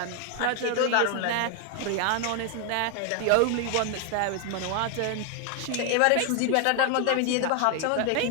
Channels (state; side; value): different; both; correlation 0.00